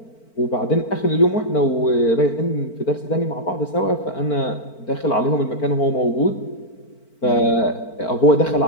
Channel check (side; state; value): right; late; 4.5 ms